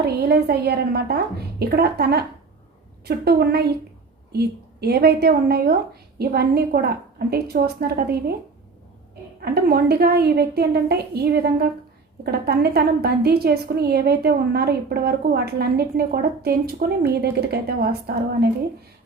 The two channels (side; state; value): left; quieter; 4.3 dB